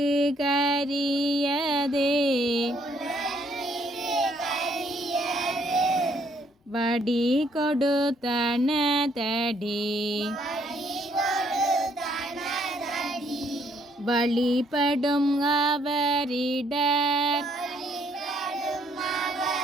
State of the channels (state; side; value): normal; both; correlation 0.68